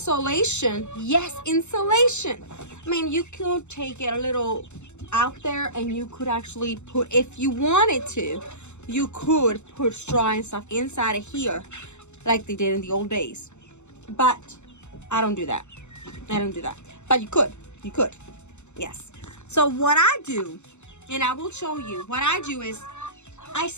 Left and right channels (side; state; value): right; late; 0.83 ms